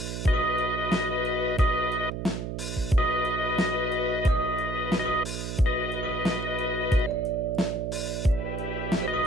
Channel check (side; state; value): right; noise; hum, 5 dB below the sound